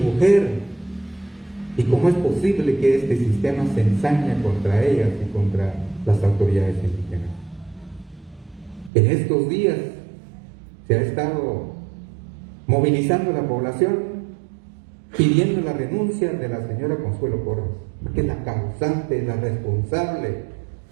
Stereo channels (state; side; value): drops out; left; at 8.9 s